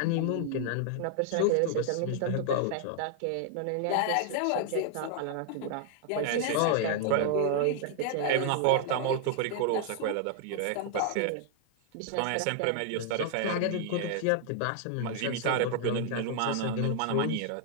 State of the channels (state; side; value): different; both; correlation 0.00